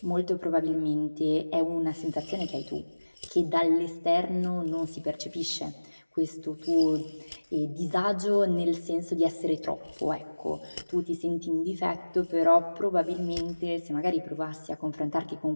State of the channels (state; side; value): inverted; both; correlation -1.00